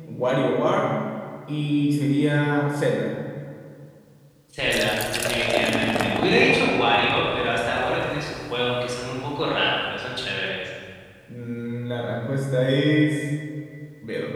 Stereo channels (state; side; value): identical; both; correlation 1.00